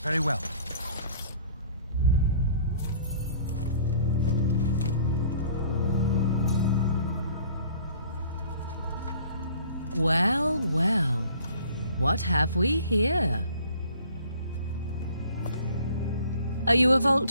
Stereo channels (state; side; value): inverted; both; correlation -0.52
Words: Very well. Well, well. What have we here? Are you a